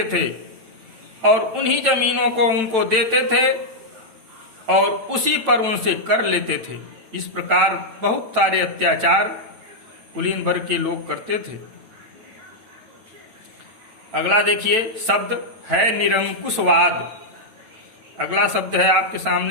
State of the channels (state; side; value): late; left; 9.0 ms